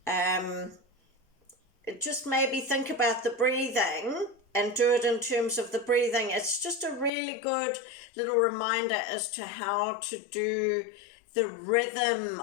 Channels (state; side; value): drops out; right; at 7.1 s